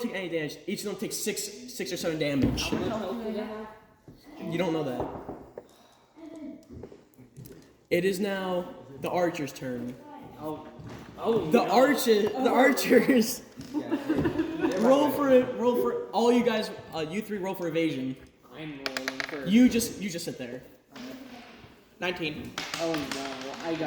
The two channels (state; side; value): identical; both; correlation 1.00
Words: any damage. Each of them takes 6 or 7 damage. How much health do I have? You don't know that. It is now the archer's turn. The archers. roll for all you guys. You three roll for evasion. I'm rolling for. You just sit there. 19. Oh no, I